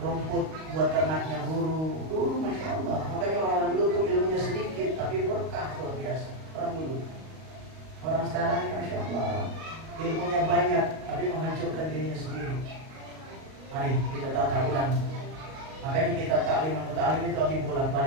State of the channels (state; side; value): late; left; 38 ms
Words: buat ternaknya guru. Dulu Masya Allah. Makanya orang-orang dulu tuh ilmunya sedikit tapi berkah luar biasa. Orang dulu. Orang sekarang ini Masya Allah ilmunya banyak tapi menghancurkan dirinya sendiri. Mari kita tata ulang. Makanya kita taklim itu lagi